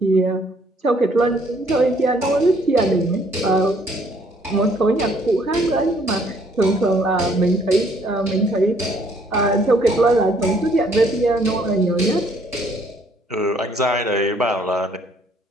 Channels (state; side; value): normal; both; correlation 0.64